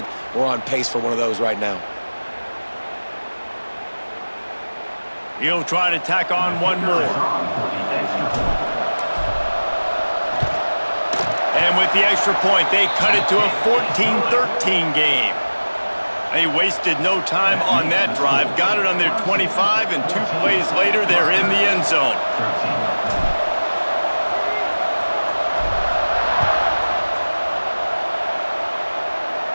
we're on pace for one of those right now. He'll try to tack on one more. And with the extra point, they cut it to a 14-13 game. They wasted no time on that drive, got it on their 25, and 2 plays later, they're in the end zone.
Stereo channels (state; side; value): inverted; both; correlation -1.00